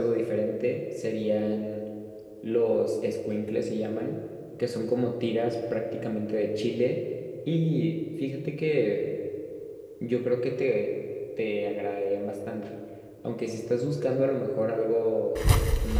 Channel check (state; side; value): identical; both; correlation 1.00